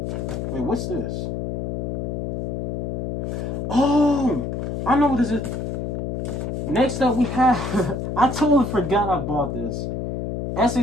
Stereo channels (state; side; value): noise; left; hum, 3 dB below the sound